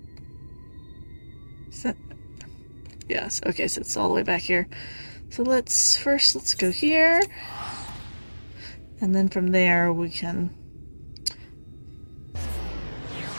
Is that... Yes, okay, so it's all the way back here. So let's go here. And then from there we can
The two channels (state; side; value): inverted; both; correlation -1.00